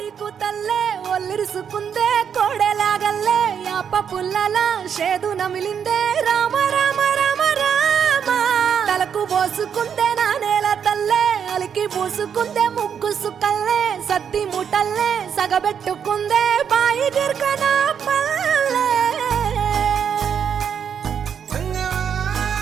కూతల్లే ఒల్లిరుసుకుందే కోడెలాగల్లే యాప పుల్లల షేదు నమిలిందే రామ రామ రామ రామ తలకు పోసుకుందే నా నేల తల్లే అలికి పూసుకుందే ముగ్గు సుక్కల్లే సద్ది ముటల్లే సగబెట్టుకుందే బాయి గిర్కన పల్లె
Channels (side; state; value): left; quieter; 7.7 dB